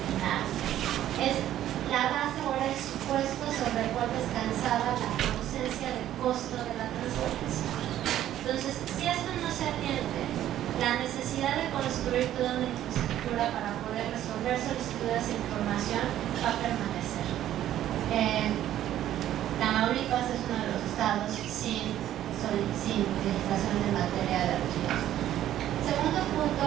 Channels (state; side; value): quieter; left; 12.2 dB